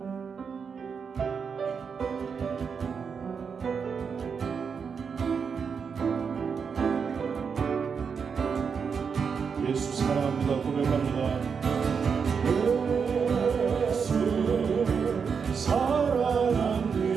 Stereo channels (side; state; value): left; quieter; 6.1 dB